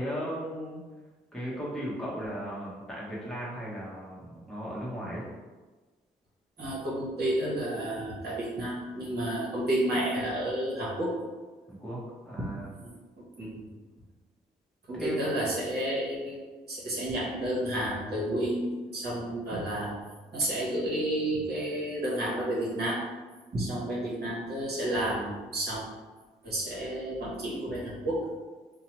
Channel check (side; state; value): both; normal; correlation 0.56